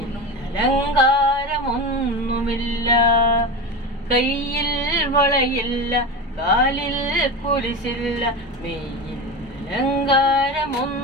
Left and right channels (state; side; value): normal; both; correlation 0.23